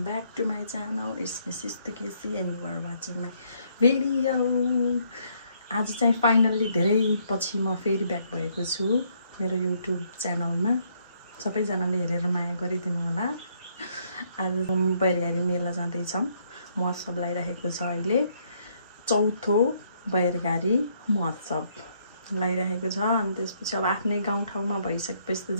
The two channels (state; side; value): inverted; both; correlation -0.70